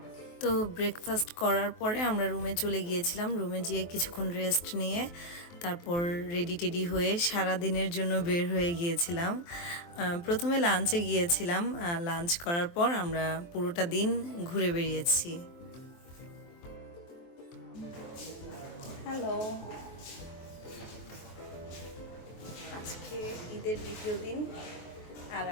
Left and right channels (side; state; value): right; late; 23 ms